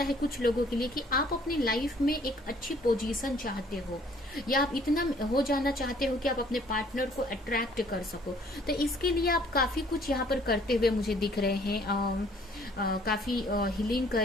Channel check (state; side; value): normal; both; correlation 0.59